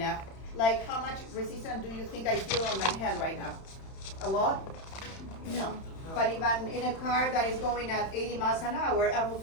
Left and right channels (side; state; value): right; late; 31 ms